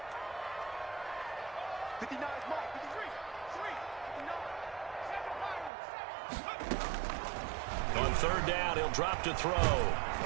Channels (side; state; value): left; drops out; at 5.7 s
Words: On 3rd down, he'll drop to throw.